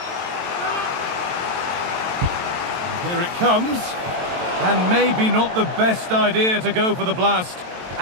And here it comes. And maybe not the best idea to go for the blast.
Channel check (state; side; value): late; left; 23 ms